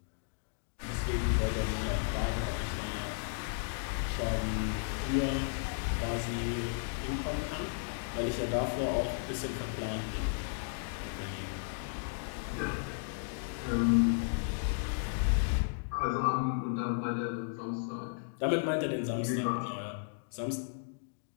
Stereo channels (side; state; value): right; silent; digital silence